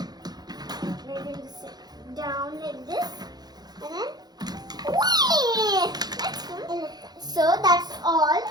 We're going to sit down like this. And then, whee! That's cool. So that's all,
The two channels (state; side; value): late; left; 0.19 ms